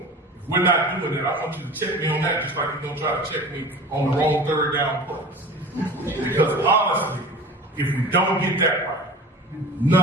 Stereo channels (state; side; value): normal; both; correlation 0.38